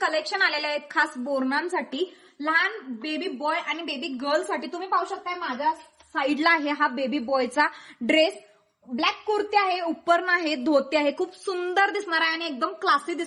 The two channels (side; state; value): both; identical; correlation 1.00